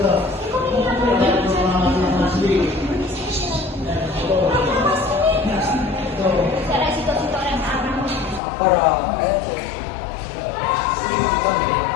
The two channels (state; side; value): drops out; right; at 8.4 s